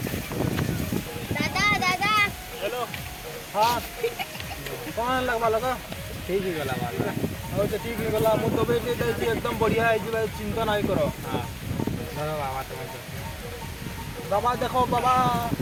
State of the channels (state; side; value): identical; both; correlation 1.00